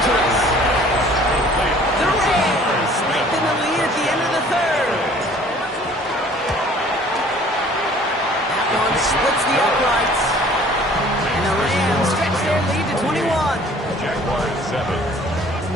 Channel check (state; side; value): normal; both; correlation 0.52